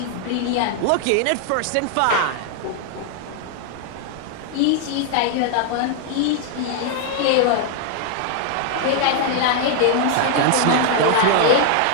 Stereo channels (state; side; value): different; both; correlation 0.00